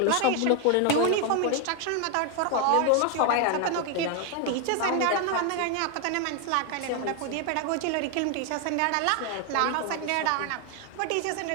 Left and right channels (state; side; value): different; both; correlation 0.01